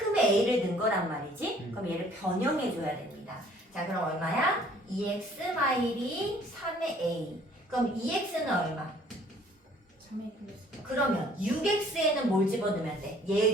a를 넣은 거란 말이지. 그럼 얘를 변형해 줘야 됩니다. 자 그럼 얼마야? 2x 마일이 3의 a. 그럼 2x는 얼마? 3A 플러스 그러면 6x에는 뭘 집어넣으면 돼?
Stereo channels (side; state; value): both; normal; correlation 0.57